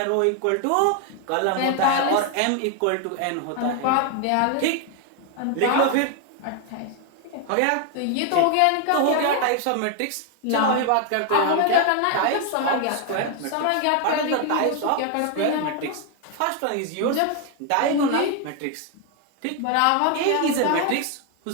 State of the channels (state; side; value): different; both; correlation 0.01